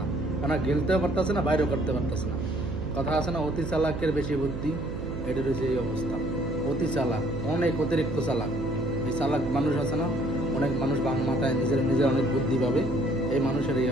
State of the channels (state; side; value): noise; right; hum, 6 dB below the sound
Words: না, কারণ গেলতেও পারতেছে না, বাইরেও করতে পারতেছে না। কথা আছে না, অতি চালাকের বেশি বুদ্ধি, এটা রয়েছে এই অবস্থা। অতি চালাক, অনেক অতিরিক্ত চালাক। এই চালাক মানুষ আছে না, অনেক মানুষ বাং মাথায় নিজের নিজের অনেক বুদ্ধি পাবে, এই মানুষের এই